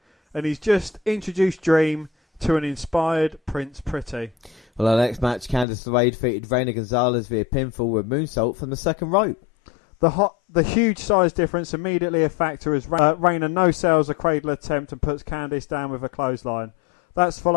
and he's just introduced Dream to an inspired Prince Pretty. Well, our next match, Candice LeRae defeated Reina Gonzalez via pinfall with moonsault from the second rope. The huge size difference immediately a factor as Reina no-sells a cradle attempt and puts Candice down with a clothesline. That's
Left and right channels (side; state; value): right; drops out; at 5.7 s